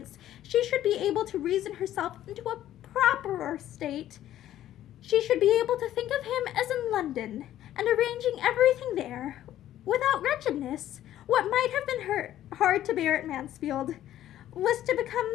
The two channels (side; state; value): right; quieter; 12.5 dB